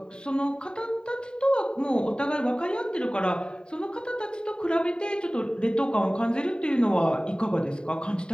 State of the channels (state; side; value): late; right; 0.049 ms